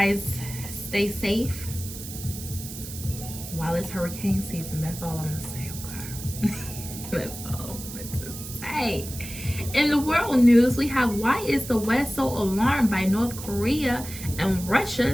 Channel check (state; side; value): noise; right; hiss, 11 dB below the sound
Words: stay safe while it's hurricane season. That's all I'm gonna say, okay? That's all I'm gonna say. In the world news, we have, why is the West so alarmed by North Korea and